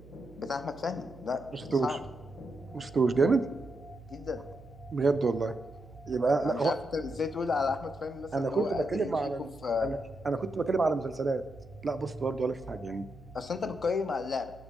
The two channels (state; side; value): noise; right; hum, 20 dB below the sound